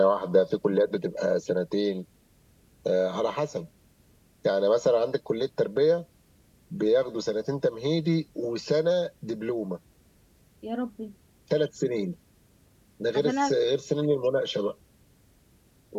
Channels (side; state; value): both; identical; correlation 1.00